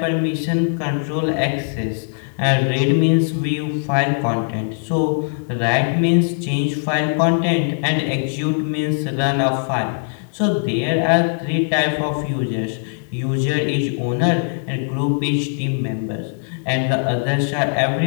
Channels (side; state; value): right; silent; 66 dB below the other